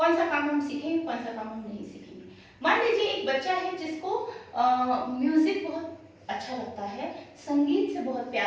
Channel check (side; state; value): both; identical; correlation 1.00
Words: सा काम हम सीखेंगे, कौन सा काम हम नहीं सीखेंगे। मान लीजिए एक बच्चा है जिसको म्यूजिक बहुत अच्छा लगता है, संगीत से बहुत